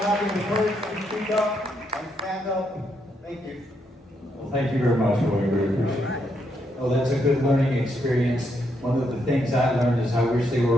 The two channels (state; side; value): normal; both; correlation 0.78